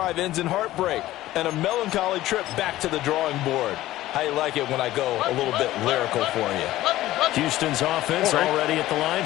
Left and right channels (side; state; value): right; quieter; 15.4 dB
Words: ends in heartbreak and a melancholy trip back to the drawing board. How you like it when I go a little bit lyrical for you? Houston's offense already at the line,